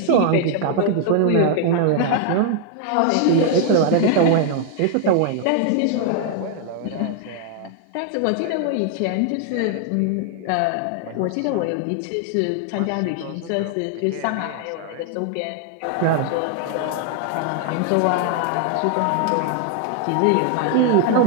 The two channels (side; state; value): both; different; correlation 0.00